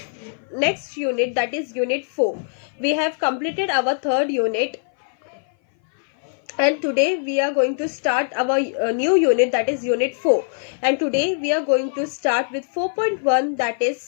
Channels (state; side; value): silent; right; 58 dB below the other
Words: next unit, that is Unit 4. We have completed our third unit, and today we are going to start our new unit, that is Unit 4. And today we are going to start with 4.1, that